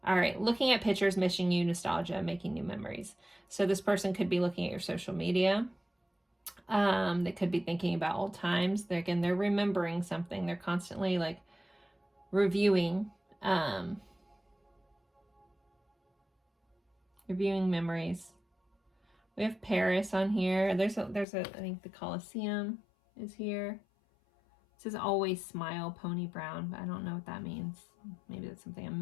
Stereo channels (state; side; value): drops out; right; at 21.2 s